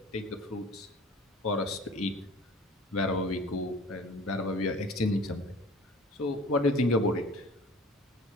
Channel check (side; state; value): both; normal; correlation 0.43